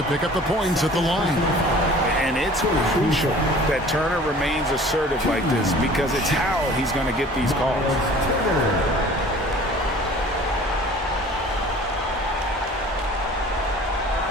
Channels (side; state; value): both; normal; correlation 0.47